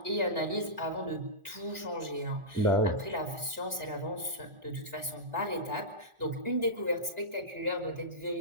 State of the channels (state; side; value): late; left; 1.4 ms